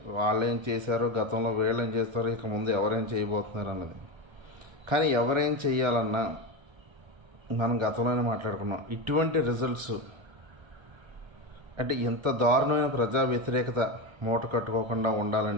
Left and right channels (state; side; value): late; left; 1.4 ms